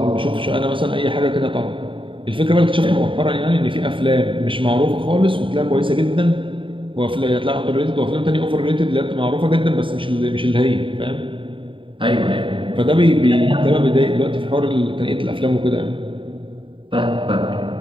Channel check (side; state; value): left; late; 0.25 ms